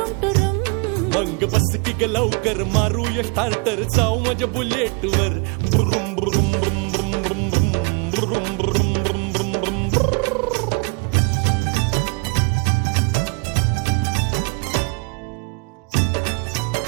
टुरुम मंग बस की ग लवकर मारूया स्टार्टर जाऊ माझ्या बुलेट वर ब्रुम ब्रुम ब्रुम ब्रुम ब्रुम ब्रुम ब्रुम ब्रुम ब्रुम ब्रुम ब्रुम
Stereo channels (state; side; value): quieter; left; 32.2 dB